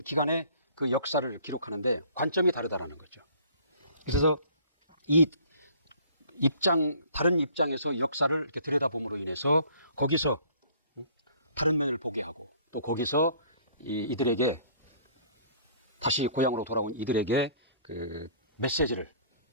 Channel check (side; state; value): both; inverted; correlation -0.54